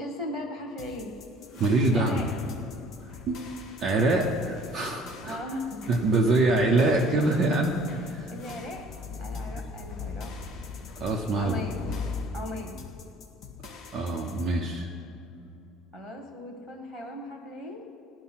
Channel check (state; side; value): normal; both; correlation 0.54